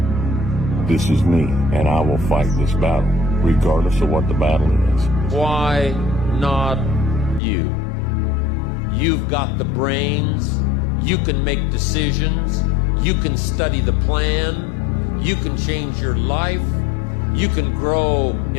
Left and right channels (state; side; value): drops out; right; at 7.4 s